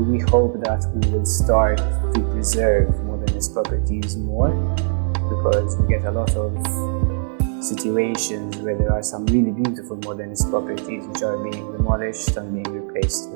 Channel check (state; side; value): silent; left; digital silence